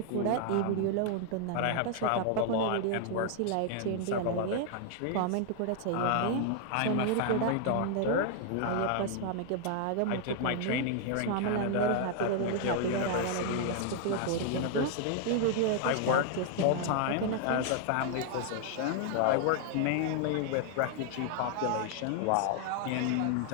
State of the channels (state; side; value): different; both; correlation 0.00